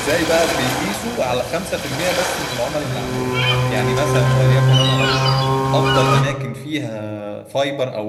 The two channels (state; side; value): identical; both; correlation 1.00